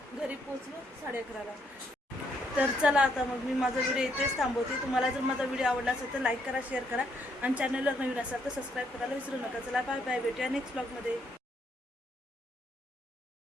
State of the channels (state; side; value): normal; both; correlation 0.72